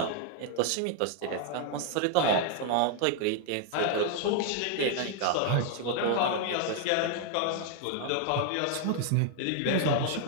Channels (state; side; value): different; both; correlation 0.00